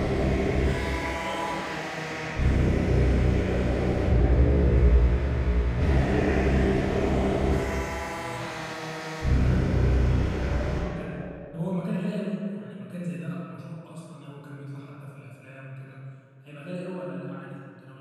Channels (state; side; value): identical; both; correlation 1.00